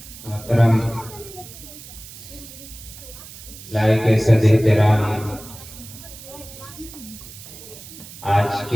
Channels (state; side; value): noise; right; hiss, 16 dB below the sound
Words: محترم لائق صد احترام، آج